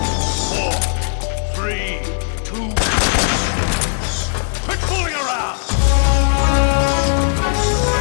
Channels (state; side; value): silent; right; 68 dB below the other